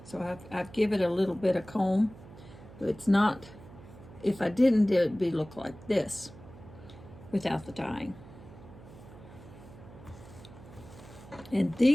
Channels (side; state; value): right; noise; hum, 18 dB below the sound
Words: I've given it a little bit of comb. But it's not, if I didn't, it would look like this without the dyeing. And